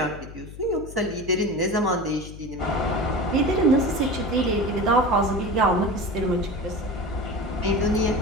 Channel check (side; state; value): left; noise; hum, 14 dB below the sound